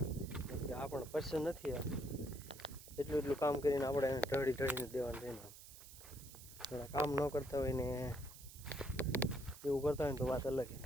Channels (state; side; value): noise; right; hiss, 16 dB below the sound